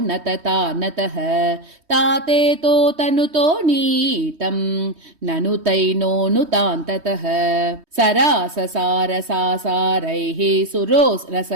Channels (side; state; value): left; late; 3.2 ms